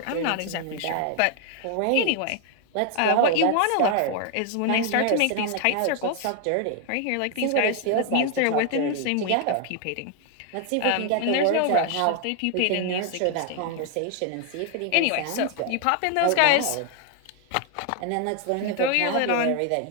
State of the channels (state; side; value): different; both; correlation 0.00